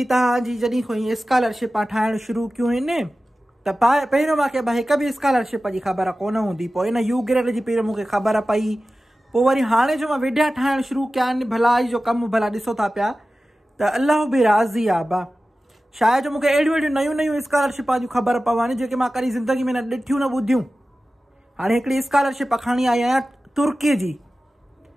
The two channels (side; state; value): both; normal; correlation 0.95